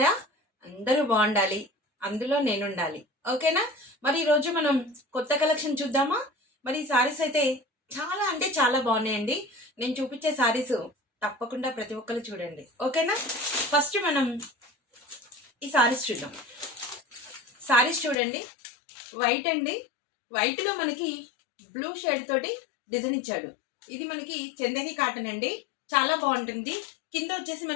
అందరూ బాగుండాలి, అందులో నేను ఉండాలి. ఓకేనా? మరి ఈరోజు మనం కొత్త కలెక్షన్ చూద్దామా? మరి ఈ సారీస్ అయితే చాలా అంటే చాలా బాగున్నాయండి. నేను చూపించే సారీస్ తప్పకుండా ప్రతి ఒక్కరు చూడండి. ఓకేనా? ఫస్ట్ మనం ఈ సారీస్ చూద్దాం. సారీస్ చూడండి, వైట్ అండి. వైట్లో మనకి బ్లూ షేడ్ తోటి డిజైన్ ఇచ్చాడు. ఇది మనకి చందేరి కాటన్ అండి, చాలా బాగుంటుంది. కింద వచ్చేసి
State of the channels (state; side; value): drops out; right; at 18.2 s